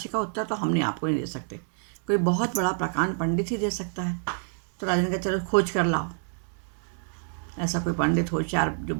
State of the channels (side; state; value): left; silent; digital silence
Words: का उत्तर तो हमने आपको नहीं दे सकते, कोई बहुत बड़ा प्रकांड पंडित ही दे सकता है। तो राजा ने कहा चलो खोज कर लाओ, ऐसा कोई पंडित होशियार जो